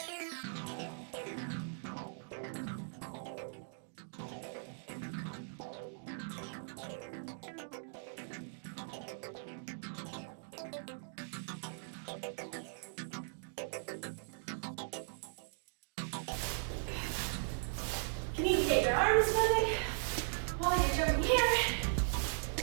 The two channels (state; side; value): silent; left; digital silence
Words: You need to get your arms moving while you're jumping here.